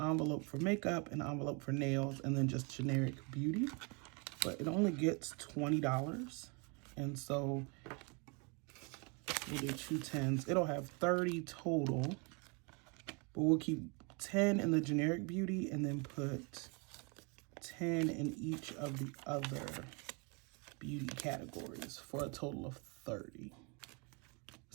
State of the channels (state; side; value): quieter; left; 32.6 dB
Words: for makeup, an envelope for nails, and then just generic beauty. But it only gets $20. And so we'll do 2 10s. It'll have 30 total, but we'll keep 10 in the generic beauty and then put 10 in each of the other beauty categories for a total of 30.